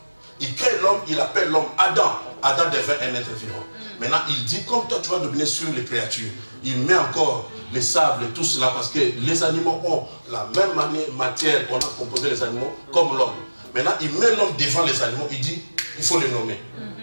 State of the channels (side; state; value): both; inverted; correlation -1.00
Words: Il crée l'homme, il appelle l'homme Adam. Adam devient un être vivant. Maintenant, il dit, comme toi tu vas dominer sur les créatures, il met encore les sables et tout cela parce que les animaux ont la même matière qu'on a composé les animaux comme l'homme. Maintenant, il met l'homme devant les animaux, il dit, il faut les nommer.